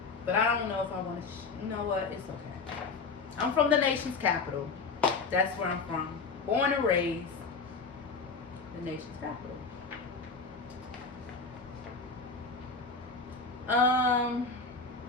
But I don't know if I want to. You know what? It's okay. I'm from the nation's capital. That's where I'm from. Born and raised. The nation's capital.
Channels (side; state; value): right; quieter; 4.5 dB